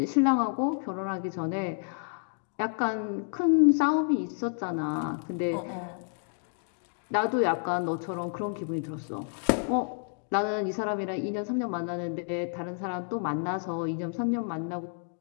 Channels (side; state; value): right; silent; 58 dB below the other